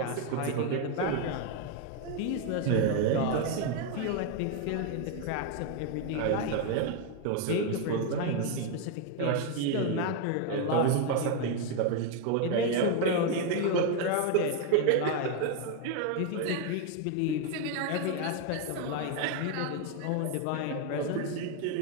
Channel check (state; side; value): different; both; correlation 0.01